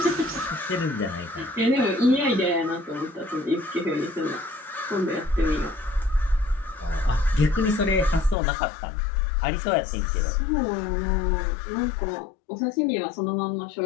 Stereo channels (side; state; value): right; drops out; at 8.3 s